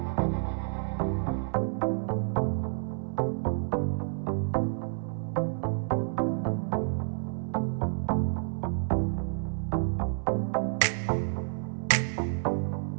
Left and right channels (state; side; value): silent; left; 58 dB below the other